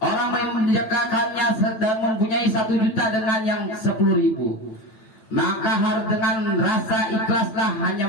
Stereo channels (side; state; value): right; late; 9.0 ms